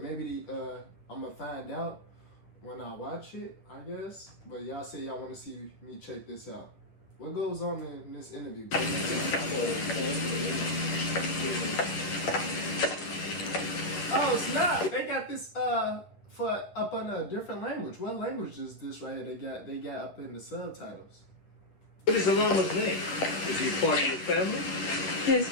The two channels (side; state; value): right; late; 9.8 ms